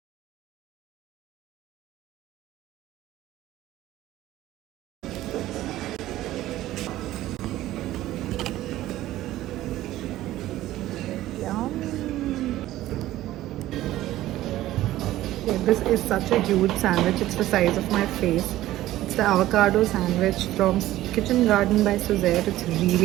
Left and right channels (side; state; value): left; quieter; 15.0 dB